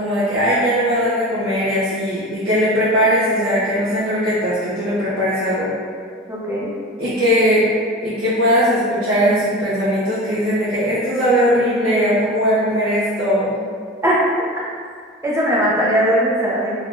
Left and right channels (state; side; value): normal; both; correlation 0.31